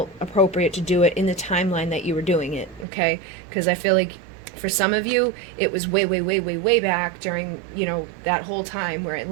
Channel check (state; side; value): drops out; left; at 2.9 s